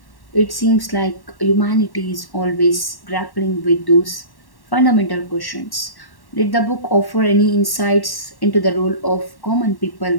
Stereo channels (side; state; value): right; late; 1.1 ms